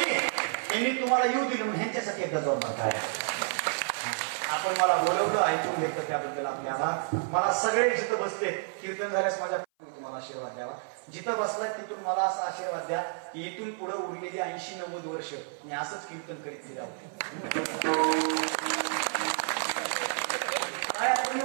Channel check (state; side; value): silent; left; 56 dB below the other